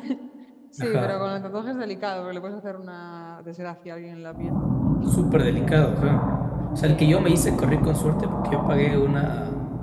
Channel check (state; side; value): identical; both; correlation 1.00